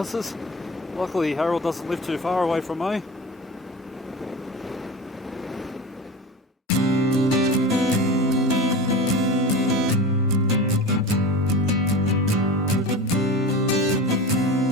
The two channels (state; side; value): normal; both; correlation 0.30